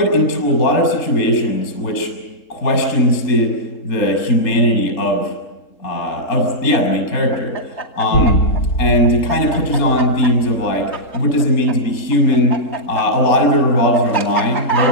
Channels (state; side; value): late; right; 3.8 ms